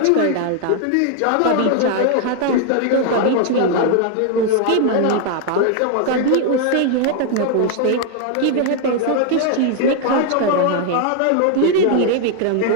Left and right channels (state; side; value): different; both; correlation 0.00